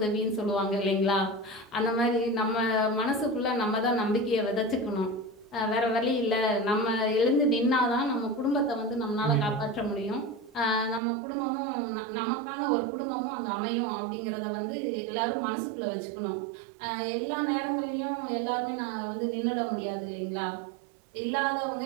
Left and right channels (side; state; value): left; drops out; at 11.0 s